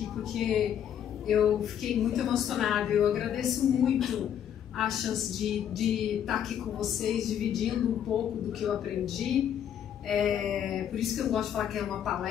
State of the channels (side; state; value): right; quieter; 9.5 dB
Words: porque eu fiquei muito emocionada. Eu agradeço muito a chance de estar aqui com vocês, dividindo um pouco do que eu aprendi. Por isso que eu gosto de falar que é uma